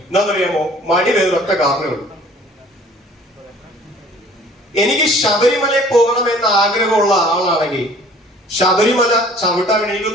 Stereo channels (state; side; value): normal; both; correlation 0.52